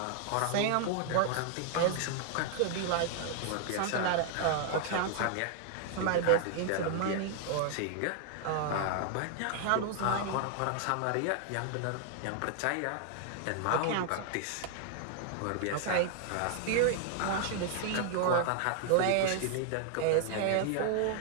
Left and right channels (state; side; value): different; both; correlation 0.00